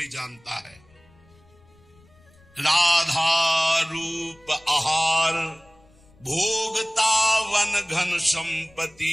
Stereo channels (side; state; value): left; noise; rumble, 30 dB below the sound